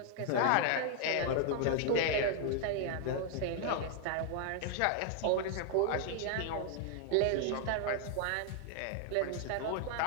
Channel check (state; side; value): different; both; correlation 0.00